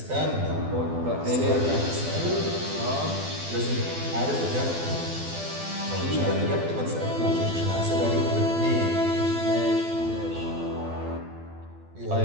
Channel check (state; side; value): late; left; 12 ms